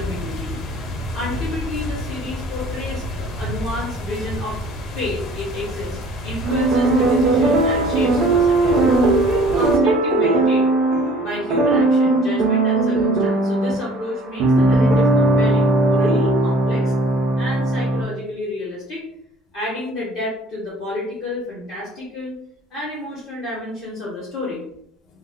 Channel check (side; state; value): both; normal; correlation 0.52